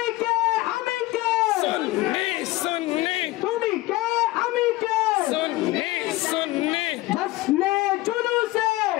কে আমি কে সুন্নি সুন্নি তুমি কে আমি কে সুন্নি সুন্নি, جشن جلوس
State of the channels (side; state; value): right; quieter; 18.8 dB